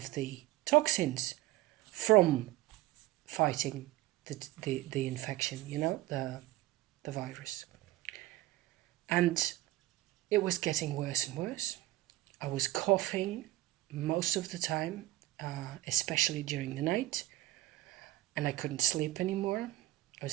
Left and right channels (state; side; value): quieter; left; 16.3 dB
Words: the toxins from fighting the infection, the virus. And it was getting worse and worse. I was coughing most of the time, especially during the night, and I couldn't sleep anymore. I